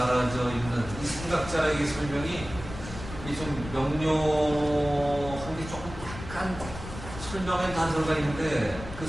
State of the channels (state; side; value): noise; left; rumble, 11 dB below the sound